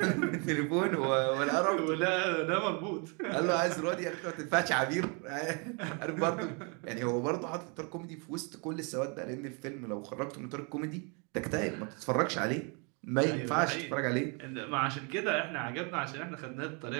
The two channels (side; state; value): left; quieter; 34.2 dB